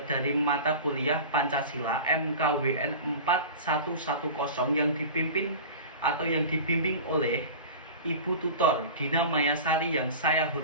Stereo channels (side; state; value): both; inverted; correlation -0.33